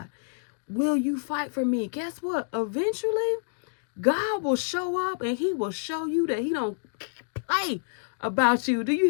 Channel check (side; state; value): right; silent; digital silence